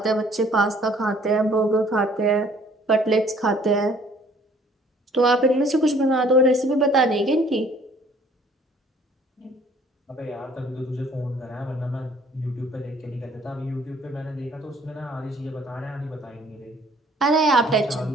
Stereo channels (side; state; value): both; normal; correlation 0.58